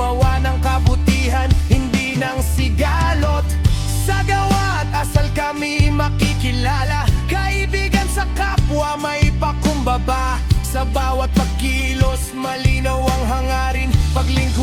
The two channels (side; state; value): both; identical; correlation 1.00